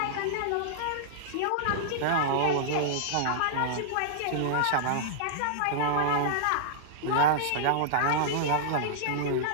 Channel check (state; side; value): different; both; correlation -0.02